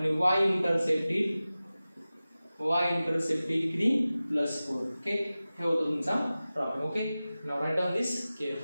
y इंटरसेप्ट किती +4. ओके, हे होतं तुमचा problem. Okay, now write down this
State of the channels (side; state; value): both; inverted; correlation -0.96